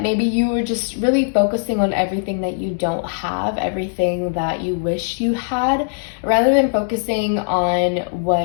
Maybe you were just really focusing on everything that you don't have, everything that you wish you had, rather than focusing on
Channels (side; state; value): right; silent; digital silence